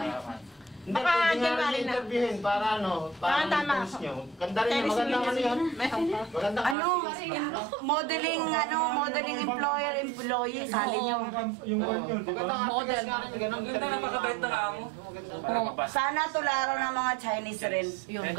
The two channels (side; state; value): left; drops out; at 6.8 s